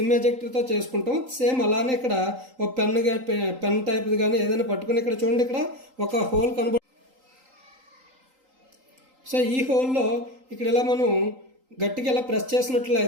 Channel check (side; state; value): left; late; 3.8 ms